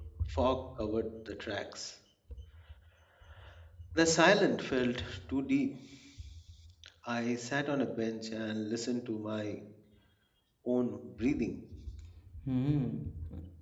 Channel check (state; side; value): identical; both; correlation 1.00